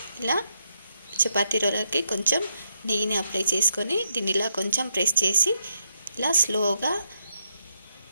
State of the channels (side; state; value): both; inverted; correlation -0.80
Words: ఇలా చపాతీ రోలర్కి కొంచెం నెయ్యిని అప్లై చేసుకొని దీన్ని ఇలా కొంచెం ప్రెస్ చేసి ఇలా స్లోగా